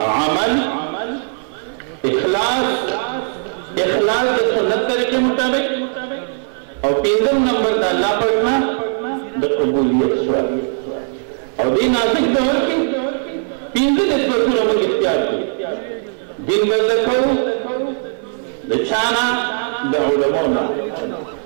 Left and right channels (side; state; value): left; silent; 56 dB below the other